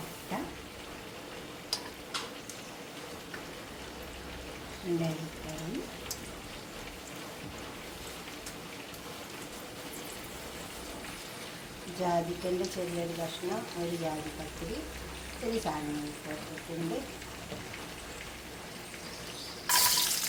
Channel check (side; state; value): both; identical; correlation 1.00